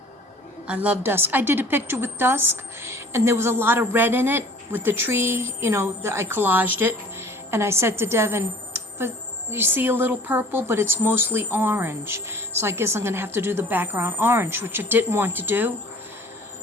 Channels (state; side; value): normal; both; correlation 0.49